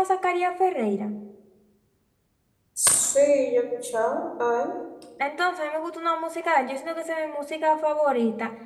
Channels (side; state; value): both; identical; correlation 1.00